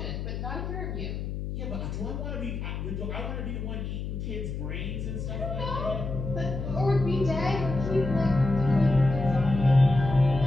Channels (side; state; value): left; noise; hum, 5 dB below the sound